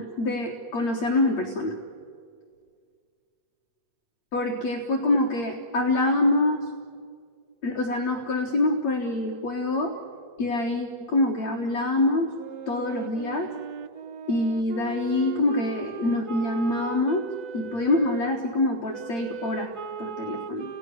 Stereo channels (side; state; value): right; late; 8.7 ms